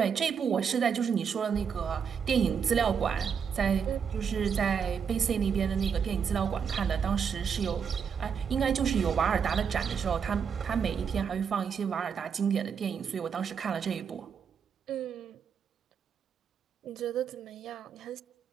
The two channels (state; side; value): quieter; left; 6.9 dB